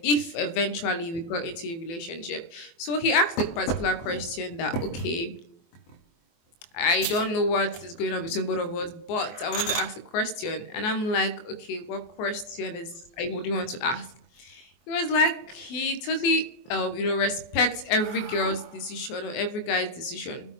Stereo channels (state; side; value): late; right; 24 ms